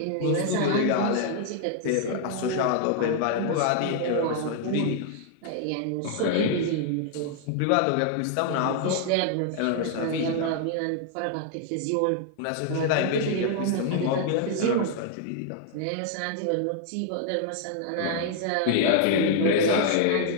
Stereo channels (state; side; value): different; both; correlation 0.00